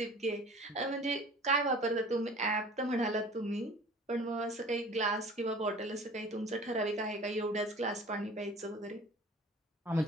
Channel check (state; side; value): normal; both; correlation 0.45